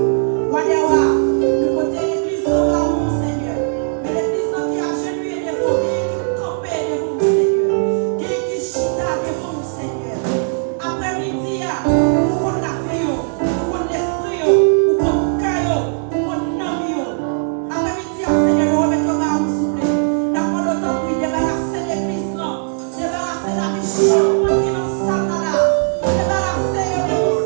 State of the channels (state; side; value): silent; left; digital silence